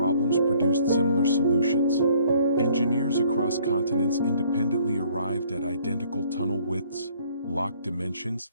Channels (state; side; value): inverted; both; correlation -0.61